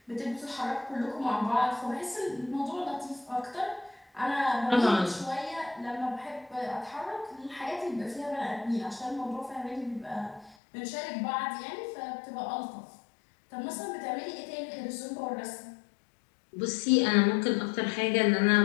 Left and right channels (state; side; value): drops out; right; at 10.6 s